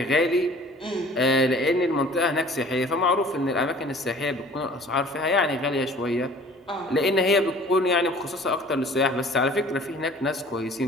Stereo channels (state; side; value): normal; both; correlation 0.49